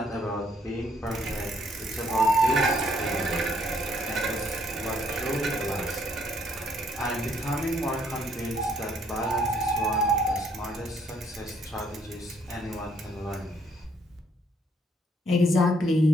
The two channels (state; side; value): normal; both; correlation 0.68